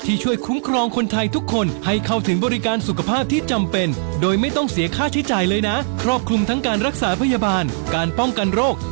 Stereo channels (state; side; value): silent; left; digital silence